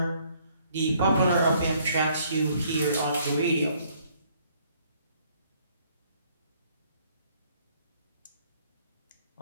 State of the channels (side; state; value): both; inverted; correlation -0.64